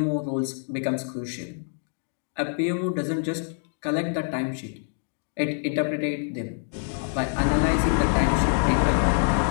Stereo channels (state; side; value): silent; right; 61 dB below the other